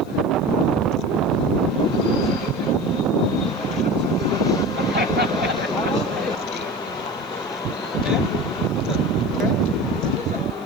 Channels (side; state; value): left; noise; hiss, 28 dB below the sound